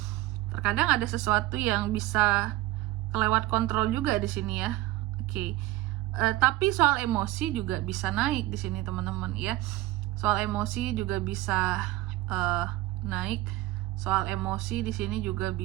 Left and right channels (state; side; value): quieter; left; 16.9 dB